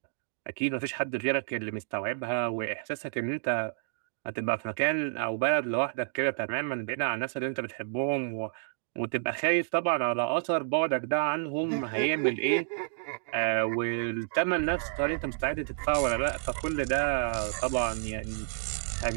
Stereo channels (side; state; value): left; silent; digital silence